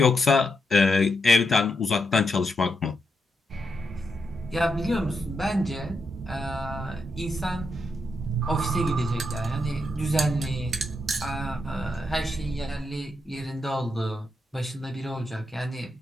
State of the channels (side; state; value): both; normal; correlation 0.83